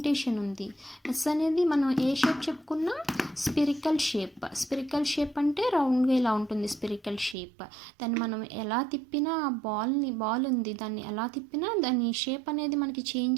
ఉంది. ఎస్ అనేది మనం ఏ షేప్ చెప్పుకున్నా, స్పిరికల్ షేప్ అంటే రౌండ్గా ఇలా ఉంటుంది స్పిరికల్ షేప్. దాన్ని మనం ఎలా తిప్పినా, బాల్ ఉంది, దాన్ని ఎలా తిప్పినా దాని షేప్ అనేది మనకి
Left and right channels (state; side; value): drops out; left; at 7.4 s